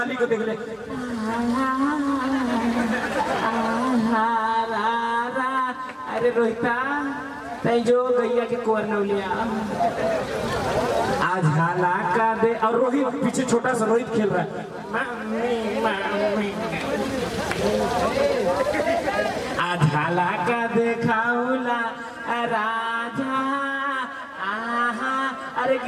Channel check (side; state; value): both; identical; correlation 1.00